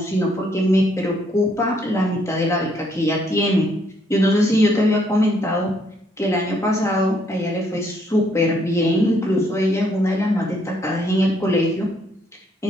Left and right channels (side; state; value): both; normal; correlation 0.69